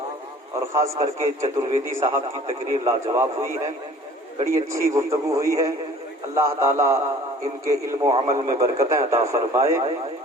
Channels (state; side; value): normal; both; correlation 0.50